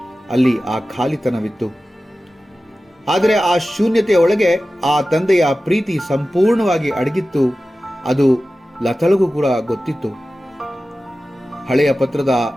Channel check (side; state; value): both; normal; correlation 0.95